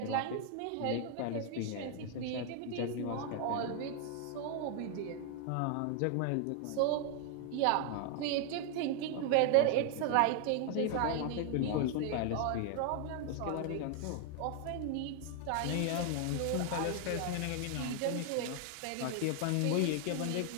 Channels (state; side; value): different; both; correlation 0.00